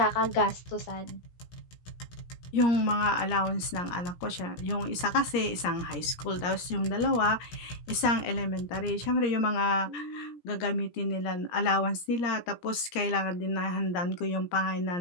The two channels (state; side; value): late; right; 17 ms